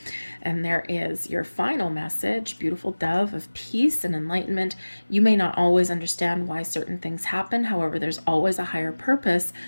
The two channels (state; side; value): inverted; both; correlation -1.00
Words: And there is your final message, beautiful dove of peace and enlightenment. You may not always understand why certain things happen. However, there's always a higher purpose